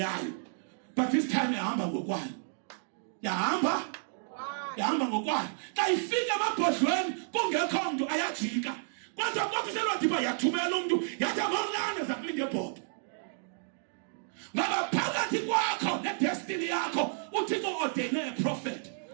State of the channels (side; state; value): left; silent; digital silence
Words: But this time yahamba ngokwayo. Yahamba ngokwayo. Xa ifika emabhodlweni kungekho mntu ayajika. Kodwa selwadiba yathumela umuntu yathi amamlane zakulinge ebhodo. Ngoba phakathi kwakho ne-destiny yakho uthixo ordene a prophet,